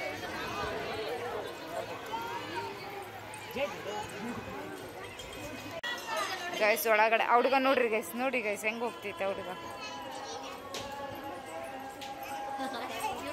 ಗೈಸ್ ಒಳಗಡೆ ಹುಡುಗ ನೋಡ್ರಿ ಗೈಸ್, ನೋಡಿ ಗೈಸ್ ಹೆಂಗೆ ಹೋಗ್ತೈತೆ ಹುಡುಗ.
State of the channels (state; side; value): identical; both; correlation 1.00